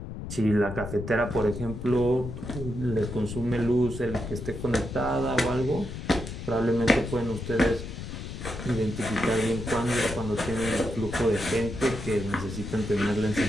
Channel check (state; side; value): noise; left; rumble, 8 dB below the sound